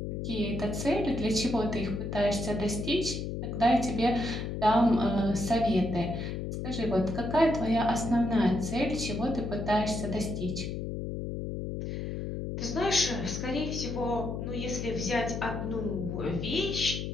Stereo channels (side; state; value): left; noise; hum, 4 dB below the sound